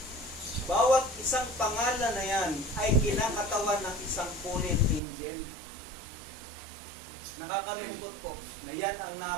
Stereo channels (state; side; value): drops out; left; at 5.0 s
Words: bawat isang pangalan na yan ay kinakatawan ng isang punit angel. Nakakalungkot po na yan ang